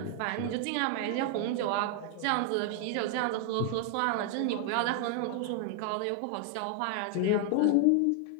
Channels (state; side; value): different; both; correlation 0.00